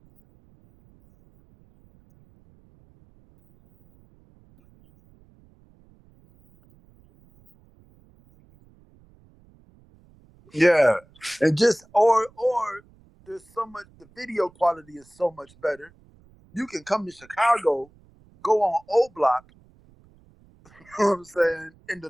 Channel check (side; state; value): right; noise; rumble, 29 dB below the sound